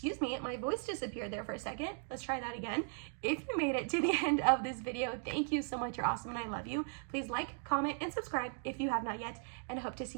me, my voice disappeared there for a second. Let's try that again. If you made it to the end of this video, thank you so much. You're awesome and I love you. Please like, comment, and subscribe if you have not yet. And I hope to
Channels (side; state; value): left; silent; 53 dB below the other